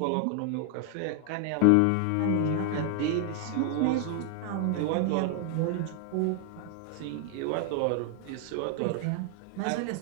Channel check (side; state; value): both; different; correlation 0.00